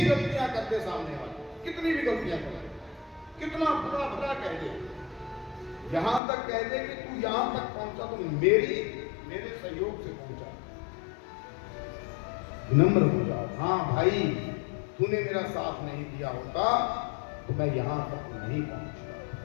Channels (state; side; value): drops out; right; at 6.2 s